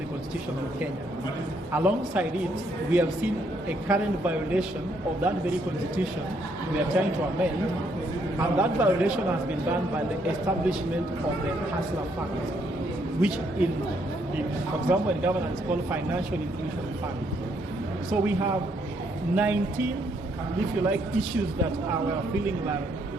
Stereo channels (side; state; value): both; normal; correlation 0.72